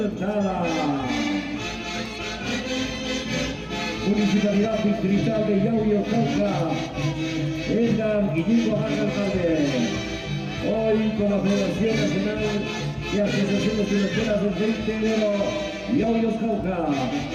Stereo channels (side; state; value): both; identical; correlation 1.00